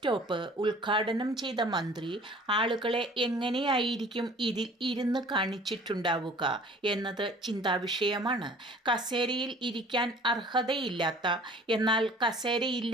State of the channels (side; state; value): both; normal; correlation 0.49